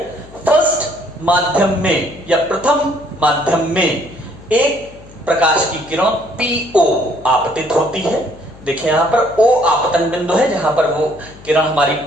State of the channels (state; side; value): noise; left; hum, 20 dB below the sound